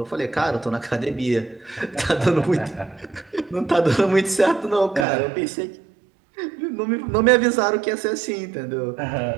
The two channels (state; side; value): drops out; left; at 5.1 s